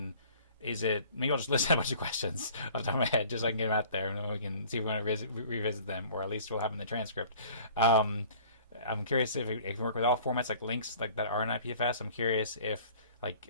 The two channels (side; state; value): both; inverted; correlation -0.49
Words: is it? Maybe I'll just list a bunch of questions off the top of my head, just so I can get them out there, and then we can see if we want to revisit them, or at least we'll have them in the transcript. I'm curious if it can work with all formats, like links like that are in IPFS. I'm curious if